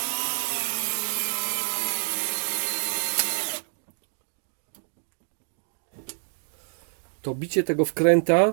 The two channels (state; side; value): silent; left; 60 dB below the other